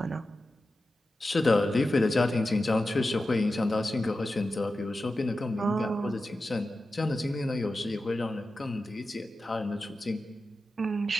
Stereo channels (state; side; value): normal; both; correlation 0.92